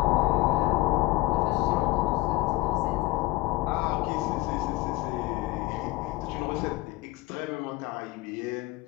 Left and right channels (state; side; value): quieter; right; 20.1 dB